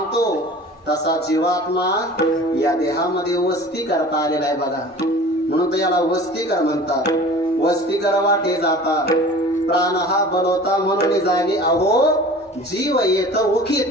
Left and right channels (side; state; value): both; normal; correlation 0.42